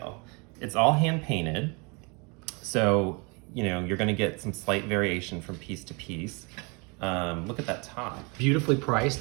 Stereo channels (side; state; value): left; quieter; 30.9 dB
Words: It's all hand painted. So, you're gonna get some slight variation from piece to piece. Look at that top. Beautifully